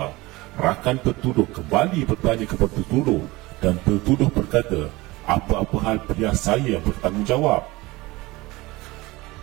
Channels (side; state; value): left; quieter; 21.1 dB